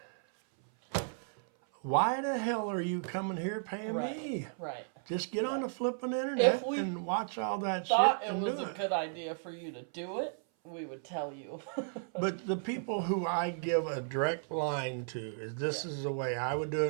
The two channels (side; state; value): left; silent; 55 dB below the other